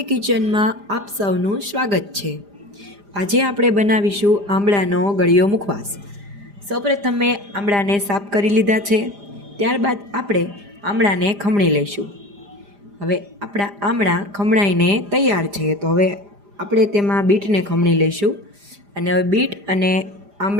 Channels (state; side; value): late; left; 5.0 ms